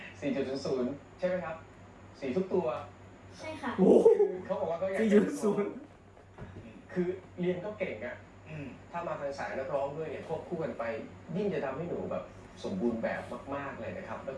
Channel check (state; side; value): identical; both; correlation 1.00